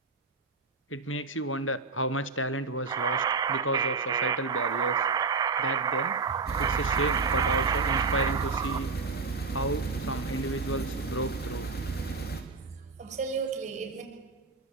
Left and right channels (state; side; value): quieter; left; 4.3 dB